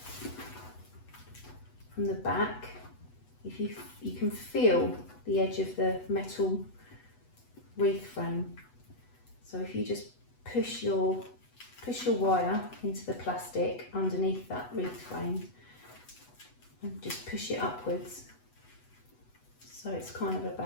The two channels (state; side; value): late; right; 8.1 ms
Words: From the back, if you can feel the edge of the metal wreath frame. So if you just push your wire into the plastic underneath that wreath frame and just push it upwards, so it's kind of